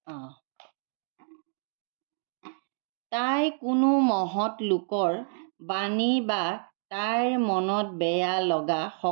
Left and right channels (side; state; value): left; silent; digital silence